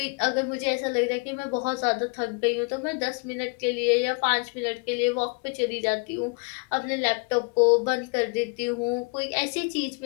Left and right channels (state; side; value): quieter; right; 32.8 dB